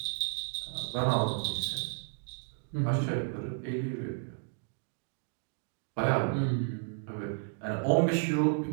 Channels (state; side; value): silent; left; 56 dB below the other